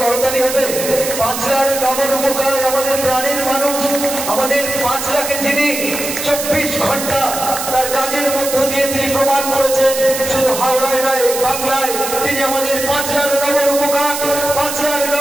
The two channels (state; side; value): noise; right; hiss, 5 dB below the sound